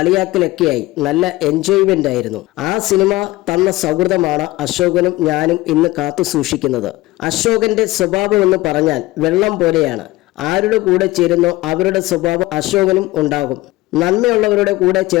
നല്ല എൻജോയ്മെന്റ് ആയിരുന്നു. ആ സിനിമ തന്ന സൗഹൃദമാണ് അശോകനും ഞാനും ഇന്ന് കാത്തു സൂക്ഷിക്കുന്നത്. അശോകന്റെ സ്വഭാവം എന്ന് പറഞ്ഞാൽ വെള്ളം പോലെയാണ്. ആരുടെ കൂടെ ചേരുന്നോ അവരുടെ സ്വഭാവം അശോകനും ഉണ്ടാകും. നന്മയുള്ളവരുടെ കൂടെ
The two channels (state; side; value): quieter; right; 19.0 dB